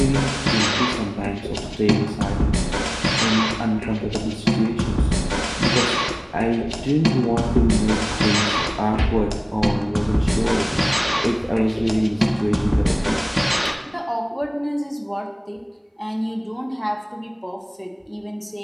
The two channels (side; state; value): both; identical; correlation 1.00